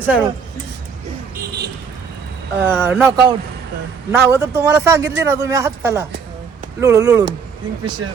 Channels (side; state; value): left; quieter; 6.0 dB